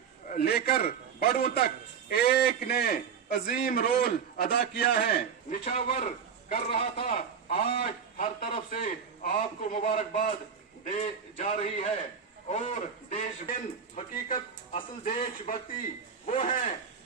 लेकर बड़ों तक एक ने अजीम रोल अदा किया है, निछावर कर रहा था। आज हर तरफ से आपको मुबारकबाद दे जा रही है। और देश हकीकत असल देशभक्ति वो है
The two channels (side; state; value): left; quieter; 6.9 dB